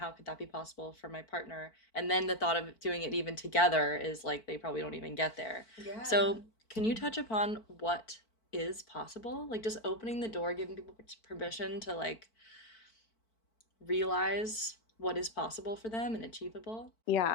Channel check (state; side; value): late; right; 4.5 ms